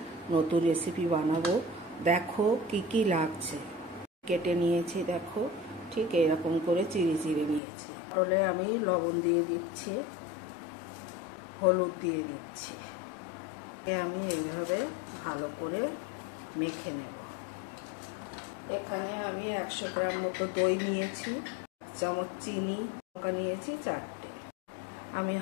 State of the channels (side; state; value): right; drops out; at 7.6 s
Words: নতুন রেসিপি বানাবো। দেখো কি কি লাগছে। কেটে নিয়েছি, দেখো ঠিক এরকম করে চিড়ে চিড়ে নিয়েছি। পটলে আমি লবণ দিয়ে দিচ্ছি, হলুদ দিয়ে দিচ্ছি। আমি এইভাবে ভালো করে মেখে নেব। এখানে আমি 100 গ্রাম মতো দই নিয়েছি, 1 চামচ চিনি, লঙ্কা নিয়েছি 4টে। আমি